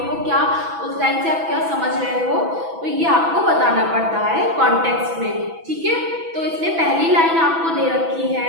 क्या, उस लाइन से आप क्या समझ रहे हो, तो ये आपको बताना पड़ता है कॉन्टेक्स्ट में। ठीक है, तो इसमें पहली लाइन आपको दे रखी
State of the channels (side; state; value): left; late; 6.1 ms